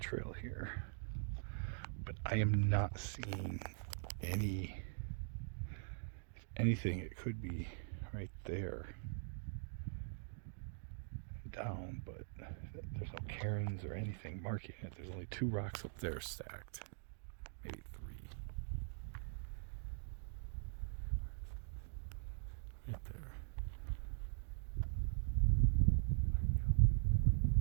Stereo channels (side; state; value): left; silent; digital silence